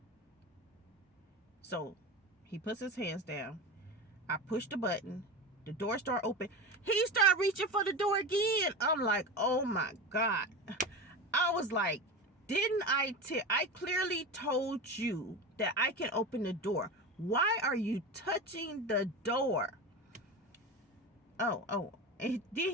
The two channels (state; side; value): normal; both; correlation 0.25